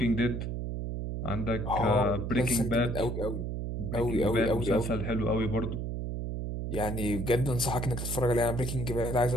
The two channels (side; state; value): right; noise; hum, 4 dB below the sound